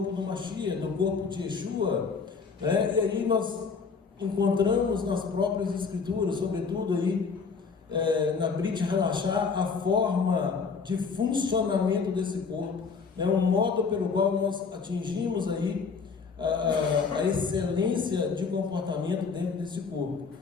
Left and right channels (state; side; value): quieter; right; 5.2 dB